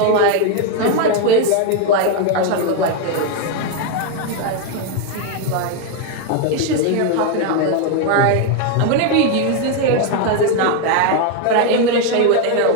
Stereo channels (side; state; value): both; different; correlation 0.01